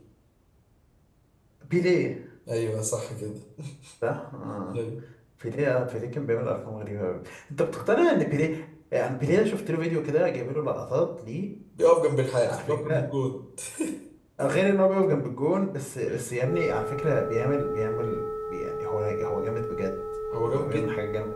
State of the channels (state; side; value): identical; both; correlation 1.00